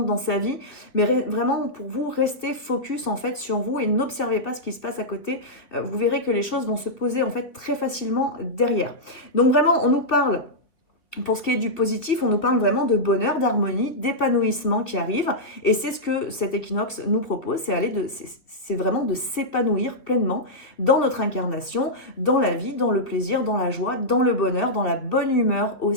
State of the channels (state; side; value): late; right; 2.5 ms